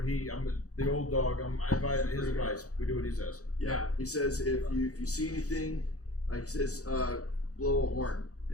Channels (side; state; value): right; late; 0.66 ms